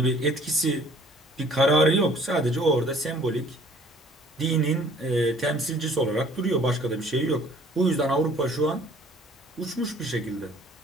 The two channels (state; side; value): normal; both; correlation 0.55